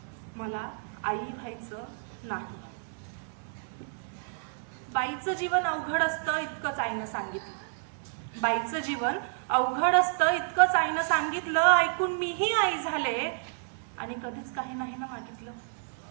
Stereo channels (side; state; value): left; silent; 58 dB below the other